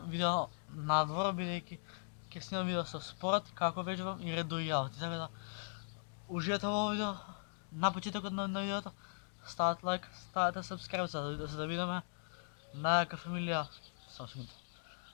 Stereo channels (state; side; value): silent; right; digital silence